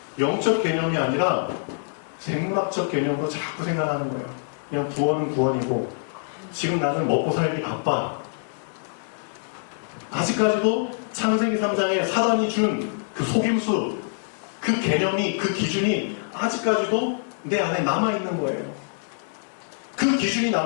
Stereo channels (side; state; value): right; silent; 62 dB below the other